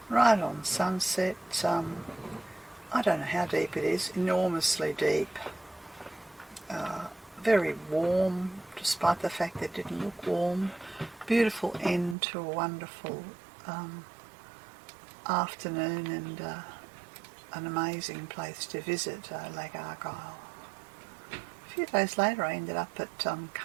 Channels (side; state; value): left; drops out; at 12.2 s